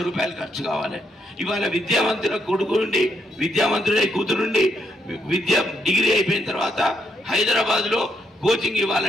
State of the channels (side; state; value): both; normal; correlation 0.77